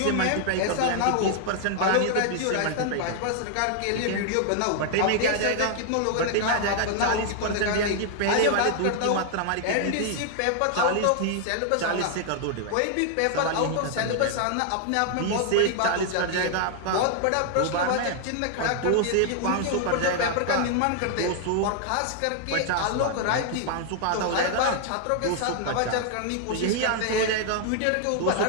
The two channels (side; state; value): both; different; correlation 0.00